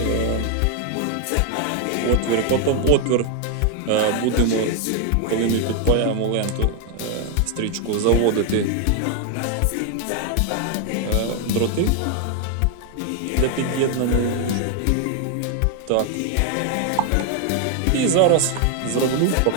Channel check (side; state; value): both; different; correlation 0.01